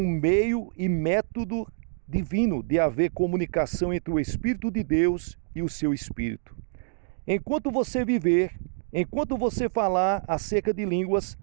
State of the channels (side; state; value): left; silent; digital silence